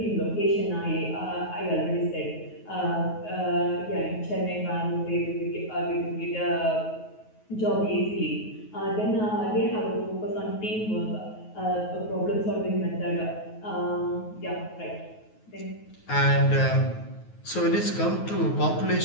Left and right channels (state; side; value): late; right; 9.4 ms